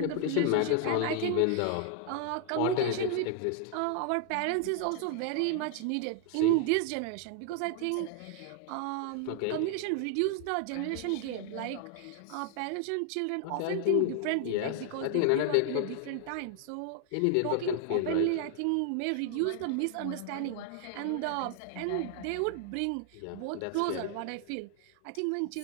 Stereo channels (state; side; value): different; both; correlation 0.00